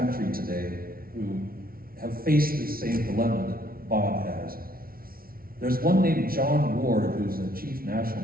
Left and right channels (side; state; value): left; late; 0.43 ms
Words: country today who have faced the same dilemma that Bob has. There's one named John Ward, who's a chief